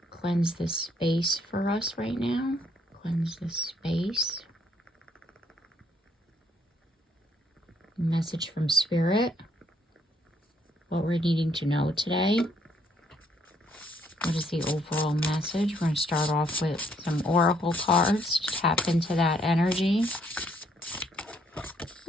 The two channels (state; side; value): normal; both; correlation 0.68